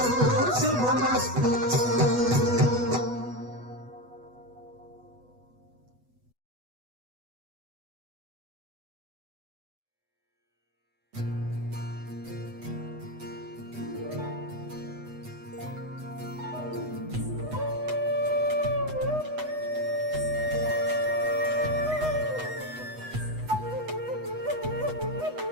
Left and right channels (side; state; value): left; late; 8.1 ms